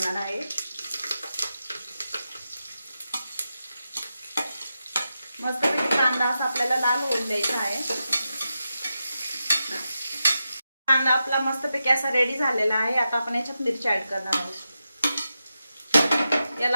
आहे। मस्तपैकी कांदा असा आपल्याला लाल होऊन द्यायचा आहे। कांदा आपला मस्तपैकी असा रेडी झालेला आहे। आता आपण याच्यात मिरची ऍड करणार आहोत।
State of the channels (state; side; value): inverted; both; correlation -0.89